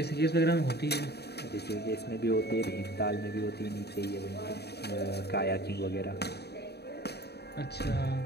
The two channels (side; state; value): right; late; 0.48 ms